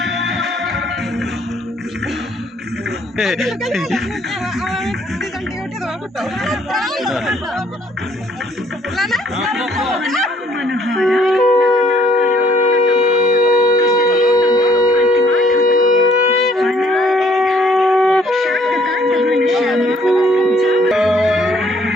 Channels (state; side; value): normal; both; correlation 0.63